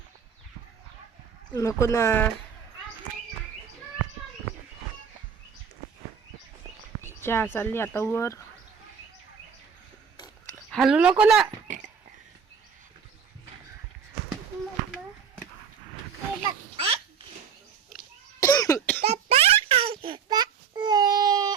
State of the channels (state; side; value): quieter; left; 6.9 dB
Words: नको ना, चहा चालली आता वर. हलू नको ना.